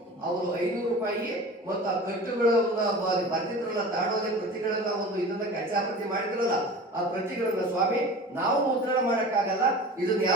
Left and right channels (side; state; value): both; normal; correlation 0.37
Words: ಅವರು 500 ರೂಪಾಯಿ ಮತ್ತು ಆ ಕಟ್ಟುಗಳನ್ನ ಬರ್ತಿದ್ರಲ್ಲ, ತಾಡೋದೆ ಪ್ರತಿಗಳನ್ನ ಒಂದು ಇದನ್ನ ಕಚ್ಚಾಪ್ರತಿ ಮಾಡಿದ್ರಲ್ಲ, ಆ ಪ್ರತಿಗಳನ್ನ ಸ್ವಾಮಿ ನಾವು ಮುದ್ರಣ ಮಾಡಕ್ಕಾಗಲ್ಲ, ಇದನ್ನ